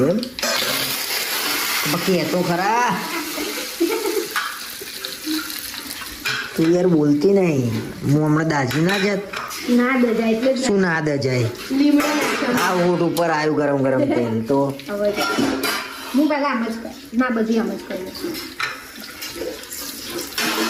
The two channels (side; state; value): both; identical; correlation 1.00